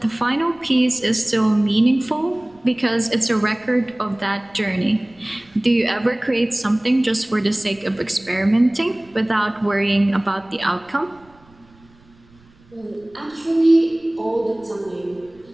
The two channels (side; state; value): right; noise; rumble, 29 dB below the sound